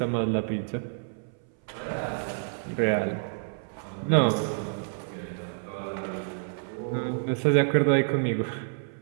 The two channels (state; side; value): silent; left; 59 dB below the other